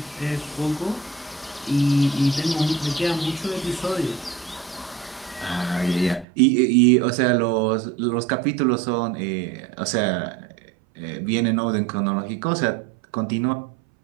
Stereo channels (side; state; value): left; drops out; at 6.2 s